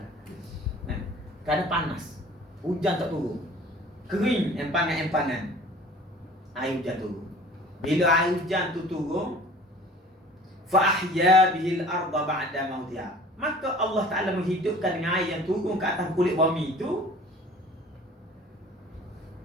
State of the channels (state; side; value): normal; both; correlation 0.47